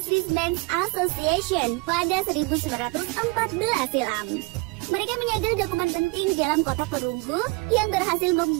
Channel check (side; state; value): left; quieter; 27.3 dB